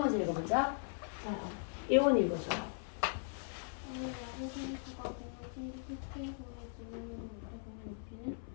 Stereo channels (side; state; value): right; silent; 52 dB below the other